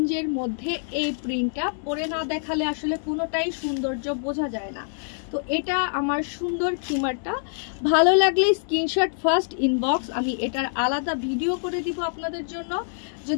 মধ্যে এই প্রিন্টটা পরে না দেখালে আসলে কোনোটাই সৌন্দর্য বোঝা যায় না। তো এটা আমার সুন্দর খিমারটা। ভালো লাগলে স্ক্রিনশট ফার্স্ট ইনবক্স, আমি এটার আলাদা ভিডিও করে দিব আপনাদের জন্য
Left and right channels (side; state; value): right; silent; digital silence